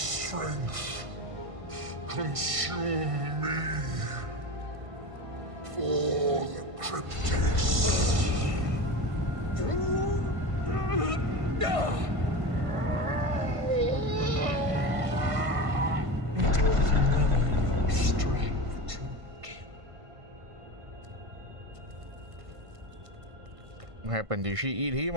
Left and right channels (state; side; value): late; left; 1.5 ms